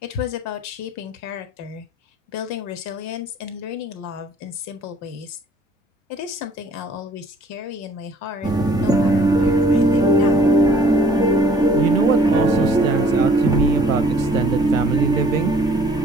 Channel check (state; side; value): normal; both; correlation 0.56